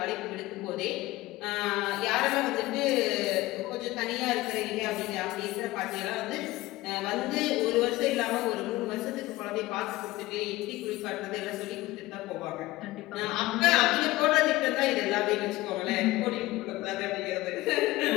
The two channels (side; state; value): right; quieter; 18.6 dB